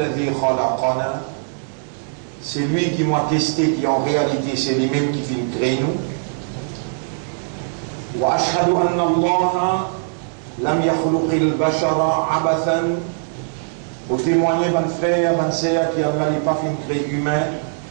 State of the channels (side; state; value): left; silent; digital silence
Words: khalaqana. C'est lui qui m'a testé, qui en réalité c'est lui-même qui fait créer nous. Wa ashhadu anna Allah lam yakhluqil bashara abathan. Pour témoigner, mon frère, mon sœur, qui Allah n'est pas fait créer humain